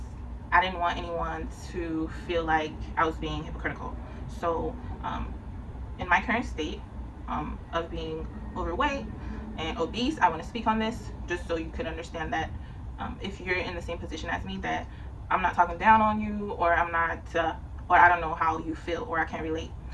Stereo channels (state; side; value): identical; both; correlation 1.00